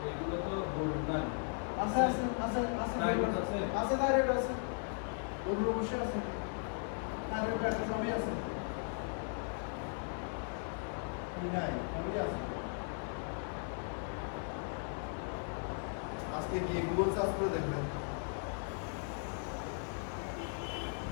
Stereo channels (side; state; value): right; silent; 53 dB below the other